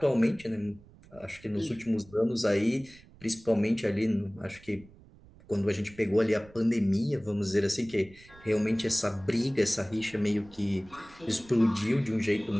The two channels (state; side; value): noise; right; rumble, 24 dB below the sound